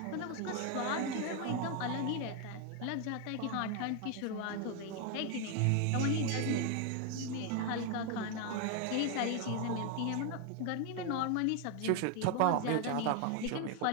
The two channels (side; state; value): both; different; correlation 0.01